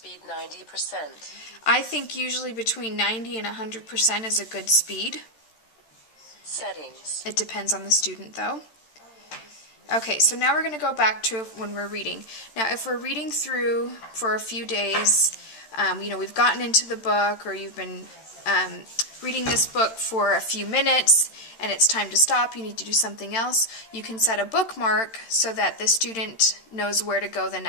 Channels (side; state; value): right; late; 13 ms